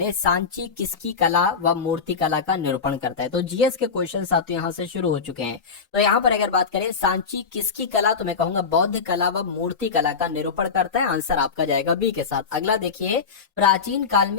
सांची किसकी कला व मूर्ति कला का निरूपण करता है? तो जीएस के क्वेश्चन साथियों यहाँ से शुरू हो चुके हैं। तो यहाँ पर अगर बात करें सांची किसकी कला, तो मैं कहूंगा बौद्ध कला व मूर्ति कला का निरूपण करता है। आंसर आपका जाएगा बी के साथ। अगला देखिए, प्राचीन काल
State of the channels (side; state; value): right; quieter; 5.5 dB